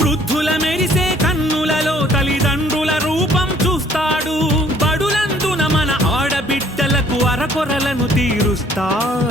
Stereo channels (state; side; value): normal; both; correlation 0.59